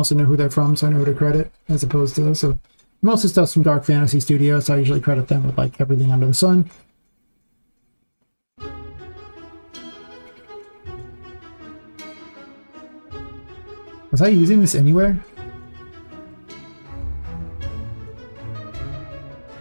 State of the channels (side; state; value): both; inverted; correlation -1.00